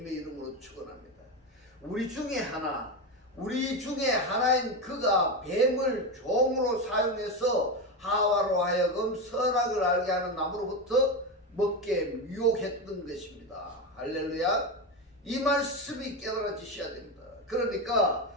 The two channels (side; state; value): both; normal; correlation 0.15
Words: 이름으로 축원합니다. 우리 중에 하나인 그가 뱀을 종으로 사용해서 하와로 하여금 선악을 알게 하는 나무로부터 먹게 유혹했던 것입니다. 할렐루야. 이 말씀이 깨달아지셔야 됩니다. 그러니까